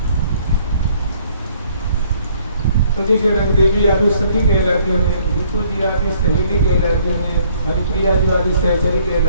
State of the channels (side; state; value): both; inverted; correlation -0.62